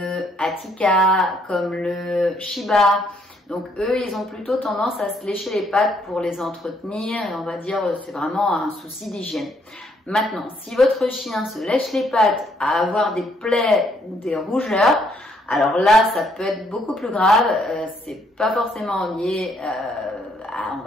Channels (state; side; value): normal; both; correlation 0.70